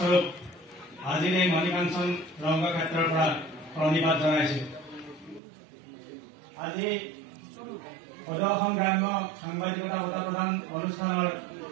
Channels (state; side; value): drops out; left; at 5.4 s